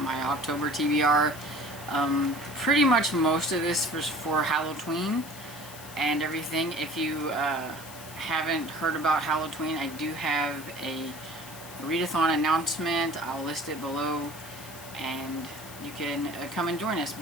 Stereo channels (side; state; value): left; noise; hiss, 15 dB below the sound